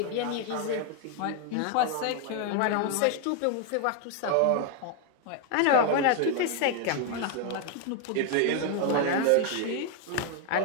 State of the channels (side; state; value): both; different; correlation 0.01